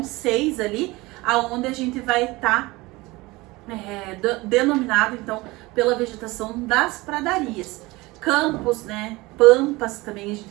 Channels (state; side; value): quieter; left; 21.7 dB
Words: 6 ali, aonde a gente vai estar denominado então pela vegetação das pradarias. Campos, né? Pampas também a gente